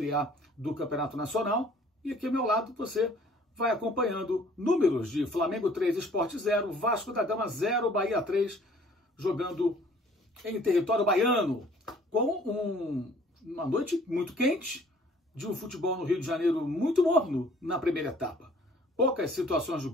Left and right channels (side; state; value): both; normal; correlation 0.55